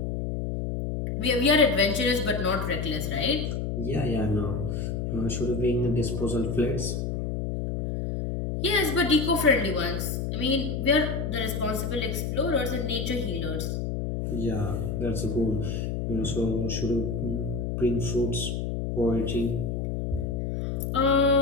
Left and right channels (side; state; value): left; noise; hum, 2 dB below the sound